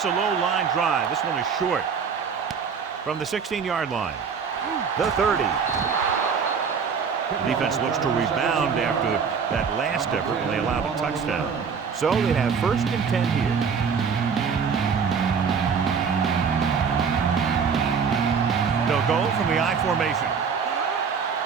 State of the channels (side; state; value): left; quieter; 6.1 dB